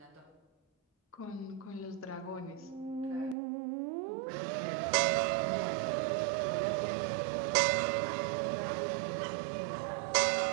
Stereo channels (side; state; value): left; drops out; at 3.4 s